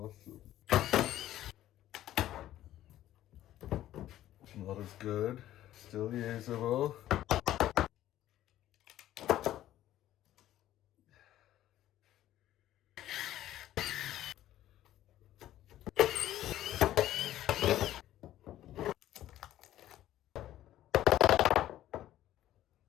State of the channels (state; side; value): quieter; right; 13.3 dB